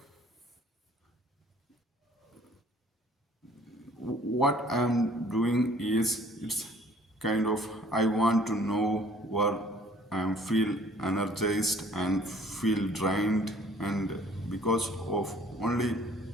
what I'm doing is, it's kind of, I want to know where I feel energized and feel drained, and because of only,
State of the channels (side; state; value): both; normal; correlation 0.55